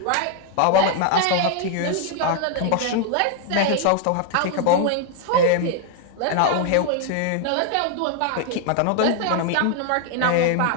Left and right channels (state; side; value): different; both; correlation 0.00